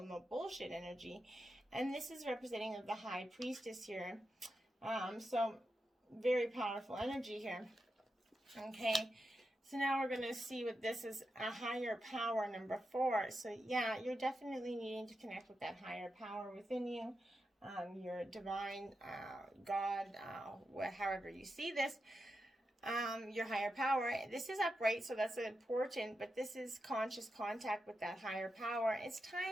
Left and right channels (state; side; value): normal; both; correlation 0.88